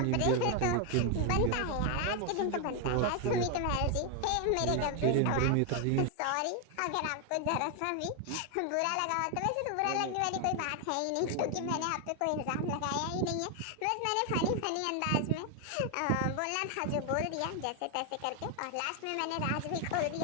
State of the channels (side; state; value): both; different; correlation 0.01